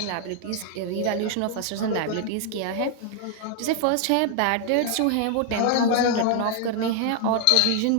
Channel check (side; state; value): both; different; correlation 0.00